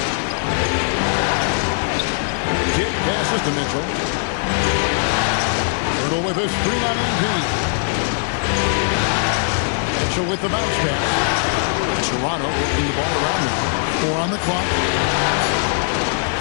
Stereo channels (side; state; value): right; silent; 63 dB below the other